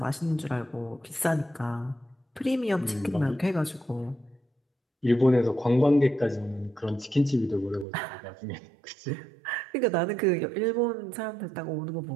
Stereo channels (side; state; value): left; drops out; at 7.9 s